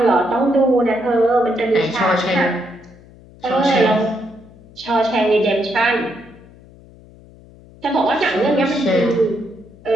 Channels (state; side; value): noise; left; hum, 23 dB below the sound